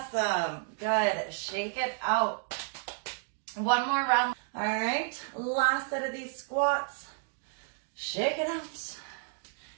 Good. Shake it out. One more round. All right. Last set of these squats. Shake it out.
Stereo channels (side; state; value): left; silent; 56 dB below the other